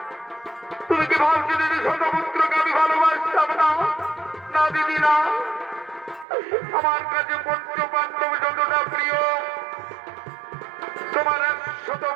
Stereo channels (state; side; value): drops out; left; at 6.2 s